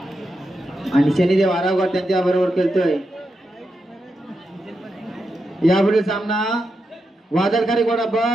आणि शनिदेव आरावकर त्यांच्या बरोबर खेळतोय. यापुढील सामना वादळकारी गोडा ब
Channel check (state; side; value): normal; both; correlation 0.86